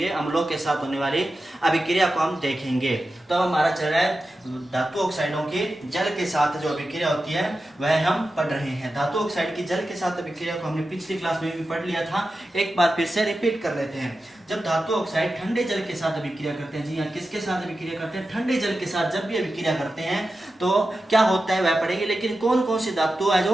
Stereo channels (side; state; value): both; normal; correlation 0.92